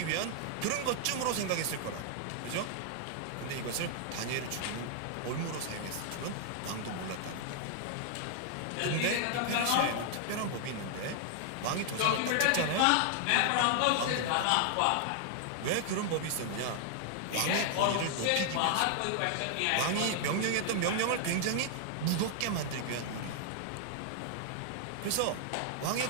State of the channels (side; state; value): both; different; correlation 0.00